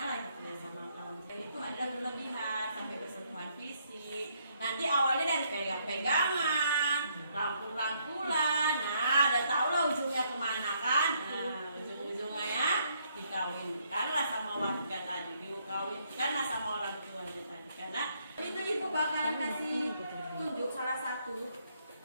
ya sama lawan jenis. Itu adalah berlebihan sampai bersentuhan fisik. Nanti awalnya dari pegang-pegangan, rangkul-rangkulan. Nah, udah tau lah ujungnya kemana kan? Nah, ujung-ujungnya ya dikawinkanlah sama warga tadi, dikawinkanlah sama orang tuanya tadi. Karena itu ibu bakalan kasih tunjuk salah satu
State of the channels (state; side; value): inverted; both; correlation -0.71